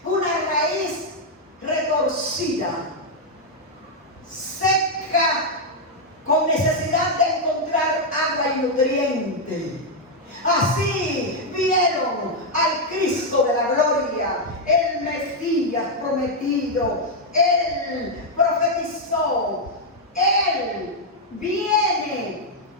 una raíz retorcida, seca, con necesidad de encontrar agua y nutriente. Así vieron al Cristo de la gloria, el Mesías prometido. Él profetizó, Él viene.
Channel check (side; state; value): both; normal; correlation -0.01